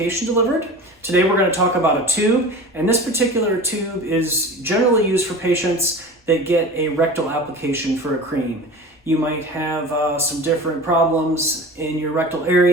delivered. Today we're going to talk about a tube, and this particular tube is generally used for patients that get a rectal application for a cream. You might have some different problems in your rectal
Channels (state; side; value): normal; both; correlation 0.35